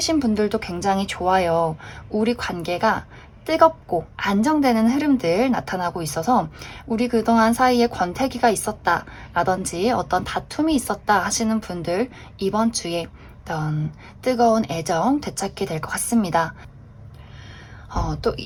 분들도 굉장히 좋아요. 우리 관계가 뜨겁고 안정되는 흐름들 나타나고 있어서 우리 그동안 사이에 권태기가 있었다 라든지 어떤 다툼이 있었다 하시는 분들 이번 주에 어떤 뜨거운 애정 되찾게 될 것 같습니다. 또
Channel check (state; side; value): identical; both; correlation 1.00